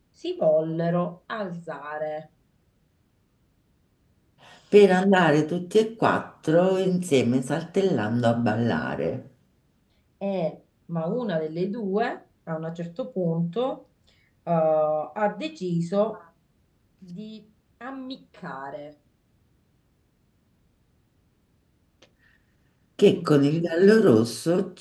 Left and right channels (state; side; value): identical; both; correlation 1.00